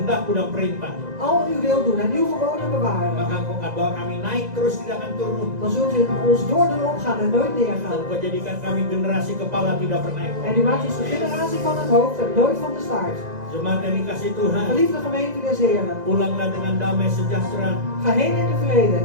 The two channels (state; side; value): late; left; 2.0 ms